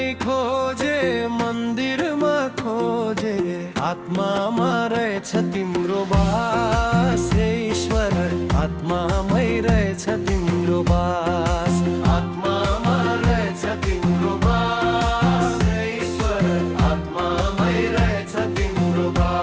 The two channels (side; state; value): both; identical; correlation 1.00